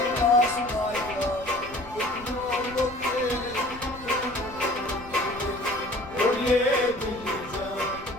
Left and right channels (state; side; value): noise; left; rumble, 17 dB below the sound